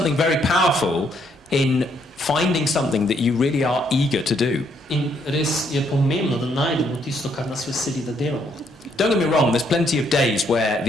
very powerful in finding something that you really are eager to do. In res je pomembno, da najdemo tisto, kar nas veseli, da delamo. Don't get me wrong, there's plenty of days where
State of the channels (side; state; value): both; normal; correlation 0.71